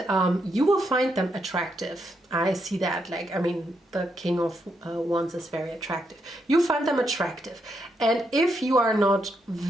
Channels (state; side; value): normal; both; correlation 0.79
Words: you will find them attractive. I see that, like, I mean, the King of Wands is very attractive. You find them attractive, and if you are not